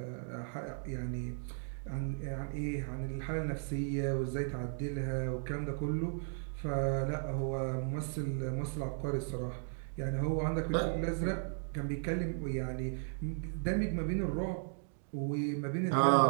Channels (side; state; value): left; silent; digital silence